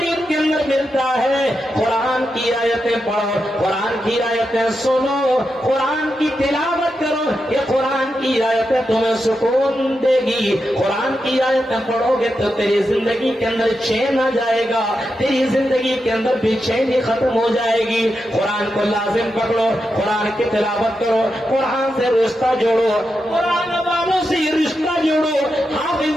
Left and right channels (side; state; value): both; normal; correlation 0.87